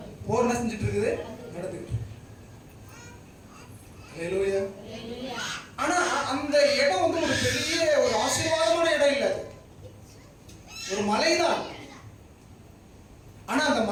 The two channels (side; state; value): both; identical; correlation 1.00